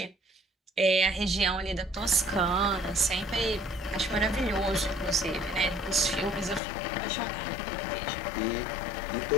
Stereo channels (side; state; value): right; drops out; at 6.6 s